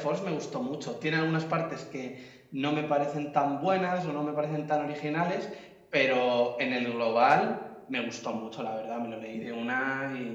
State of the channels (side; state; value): both; identical; correlation 1.00